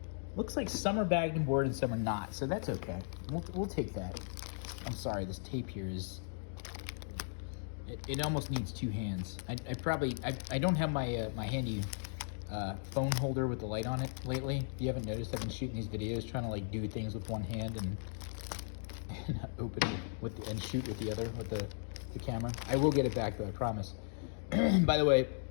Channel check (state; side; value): silent; right; digital silence